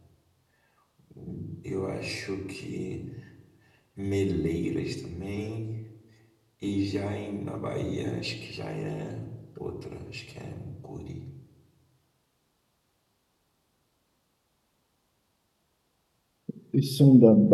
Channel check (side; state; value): both; identical; correlation 1.00